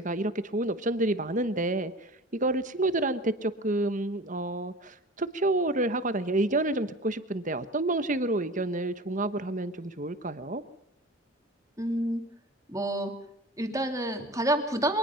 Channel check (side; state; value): both; normal; correlation 0.37